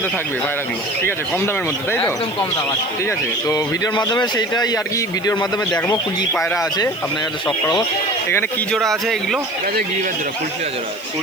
থাকবে পায়রাগুলো, ঠিক আছে, কম দামের মধ্যে, তাই তো? একদম কম দাম আছে, ঠিক আছে। তো ভিডিওর মাধ্যমে সেইটাই আর কি, ভিডিওর মাধ্যমে দেখবো কী পায়রা আছে আপনার কাছে শখ করাবো। এখানে কি জোড়া আছে এগুলো? গিরিবাজ জোড়া, ফুলশিরা জোড়া।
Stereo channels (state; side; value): noise; left; hiss, 21 dB below the sound